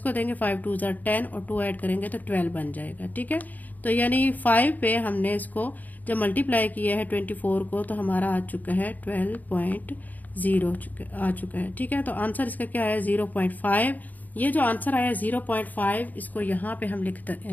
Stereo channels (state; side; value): late; right; 0.081 ms